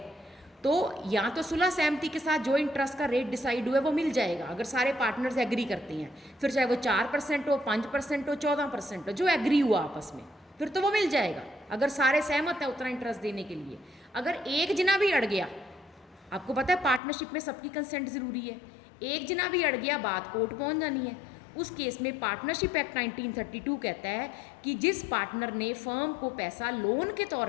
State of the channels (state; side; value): drops out; right; at 17.0 s